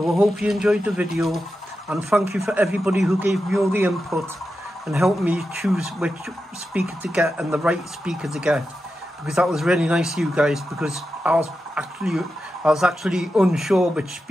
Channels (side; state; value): both; normal; correlation 0.90